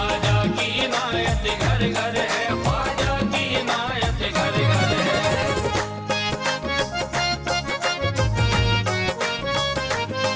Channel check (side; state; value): both; identical; correlation 1.00